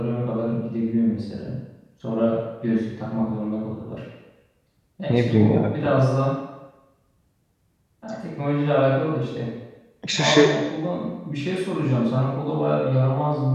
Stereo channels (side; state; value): both; identical; correlation 1.00